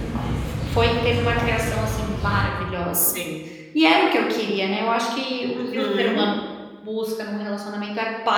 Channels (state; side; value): identical; both; correlation 1.00